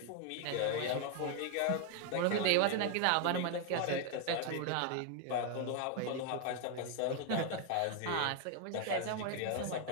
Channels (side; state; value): both; different; correlation 0.00